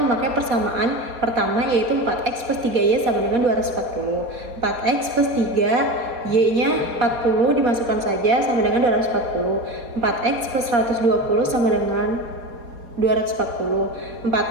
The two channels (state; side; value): late; left; 4.3 ms